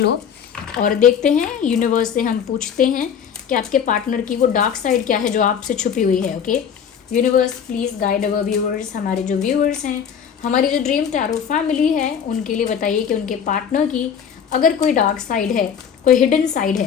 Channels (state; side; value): quieter; right; 7.8 dB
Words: और देखते हैं यूनिवर्स से हम पूछते हैं कि आपके पार्टनर की वो डार्क साइड क्या है जो आपसे छुपी हुई है। Okay universe, please guide our viewers. हमारे जो व्यूअर्स हैं, हमारी जो ड्रीम टैरो फैमिली है, उनके लिए बताइए कि उनके पार्टनर की अगर कोई डार्क साइड है, कोई हिडन साइड